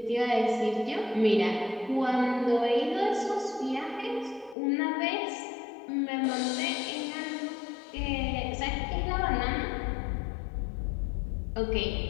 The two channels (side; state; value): right; drops out; at 4.5 s